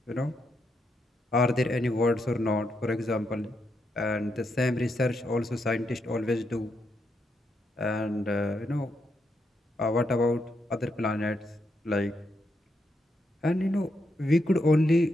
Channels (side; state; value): both; normal; correlation 0.81